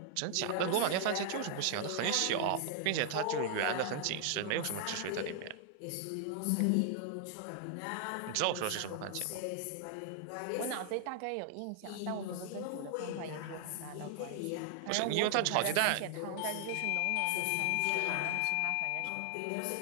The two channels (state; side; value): different; both; correlation 0.00